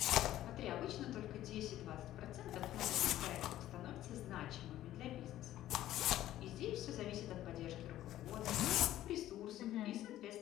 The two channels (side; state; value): right; quieter; 13.6 dB